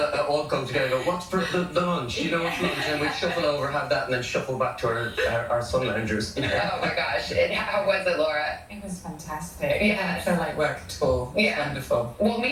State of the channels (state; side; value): identical; both; correlation 1.00